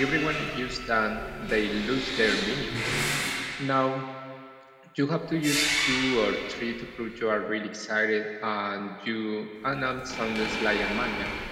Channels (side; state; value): both; identical; correlation 1.00